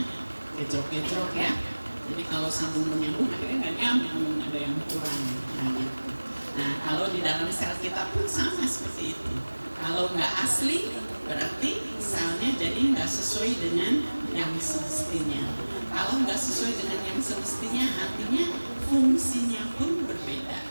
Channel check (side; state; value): both; inverted; correlation -1.00